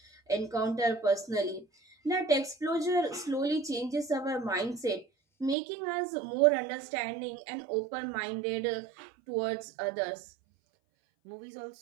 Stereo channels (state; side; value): drops out; left; at 5.6 s